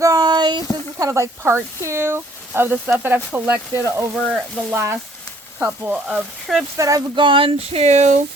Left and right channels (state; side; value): normal; both; correlation 0.61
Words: This is kind of like part 2 of the stuff that I've collected over the last couple of trips that I've gone to.